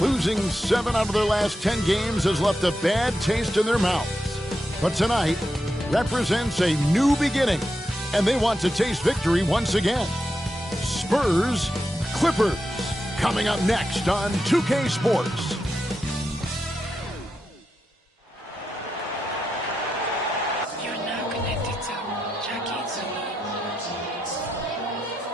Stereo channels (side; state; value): both; normal; correlation 0.86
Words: 7 out of their last 10 games, has left a bad taste in their mouths. But tonight represents a new beginning, and they want to taste victory once again. Spurs, Clippers, coming up next on 2K Sports.